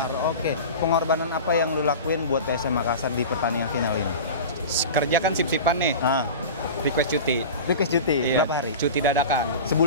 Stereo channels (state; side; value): inverted; both; correlation -0.32